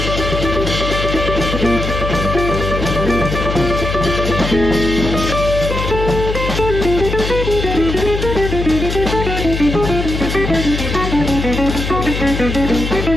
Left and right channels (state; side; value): noise; left; hum, 4 dB below the sound